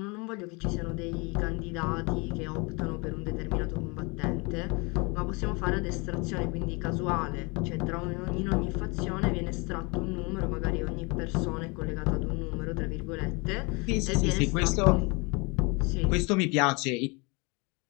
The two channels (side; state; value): right; quieter; 28.7 dB